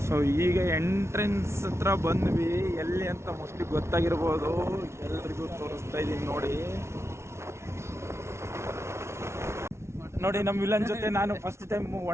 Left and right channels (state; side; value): late; left; 0.13 ms